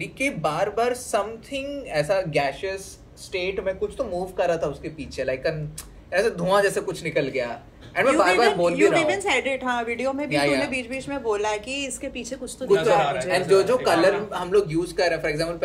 कि बार बार something ऐसा gaseous स्टेट में कुछ तो मूव कर रहा था उसके पीछे, लाइक ऐसे धुआं जैसे कुछ निकल गया. एंड मैं बार बार बोल भी रहा हूं, said it, हाँ वीडियो में भी तूने बीच-बीच में बोला है कि इसके पीछे कुछ तो दिख रहा है. एंड जो कलर हम लोग यूज कर रहे हैं, फॉर एग्जांपल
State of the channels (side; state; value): both; identical; correlation 1.00